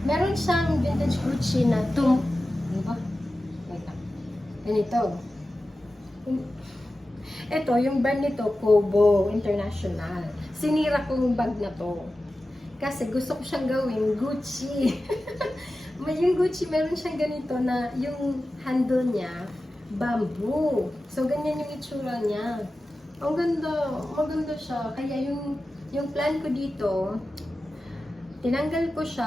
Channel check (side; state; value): both; normal; correlation 0.94